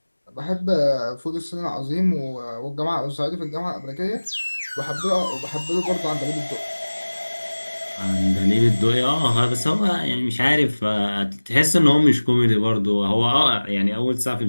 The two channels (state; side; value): inverted; both; correlation -1.00